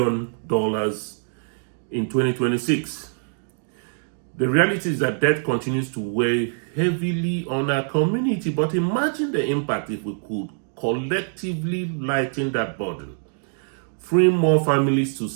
in 2026. The reality is that debt continues to weigh heavily on our community, but imagine the impact if we could collectively lighten that burden, freeing more families to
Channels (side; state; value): left; silent; digital silence